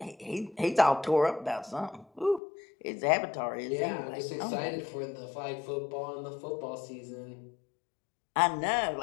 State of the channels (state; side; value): drops out; right; at 2.4 s